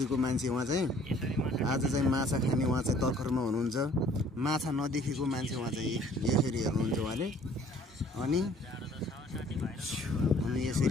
मान्छे। उहाँ चाहिँ आज चाहिँ माछा खाने उहाँ चाहिँ तर्खरमा हुनुहुन्छ। माछा नदेखेको मान्छे उहाँ चाहिँ यसरी हेर्नुहुन्छ उहाँले। अनि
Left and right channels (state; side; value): normal; both; correlation 0.56